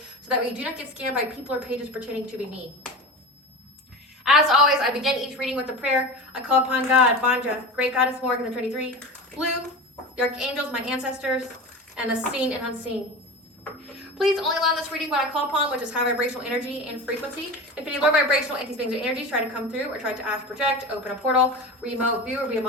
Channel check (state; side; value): normal; both; correlation 0.29